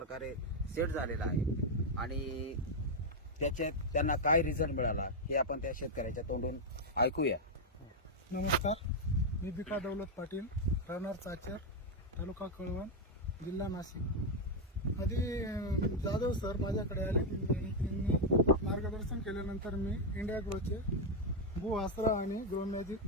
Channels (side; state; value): both; normal; correlation 0.01